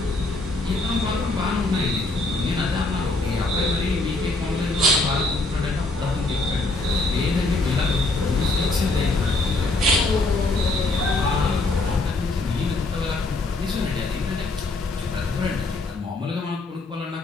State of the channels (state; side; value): quieter; right; 3.1 dB